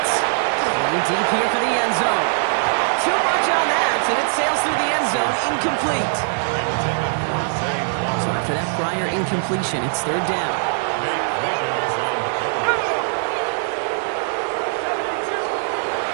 Going deep here for the end zone. Too much on that, and it sails through the end zone. Incomplete. So after that prior incompletion, it's 3rd down.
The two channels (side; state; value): left; silent; digital silence